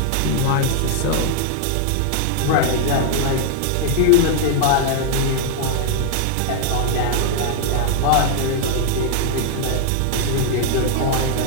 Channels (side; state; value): both; different; correlation 0.00